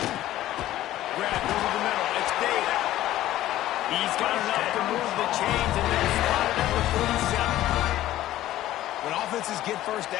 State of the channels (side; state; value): right; quieter; 14.2 dB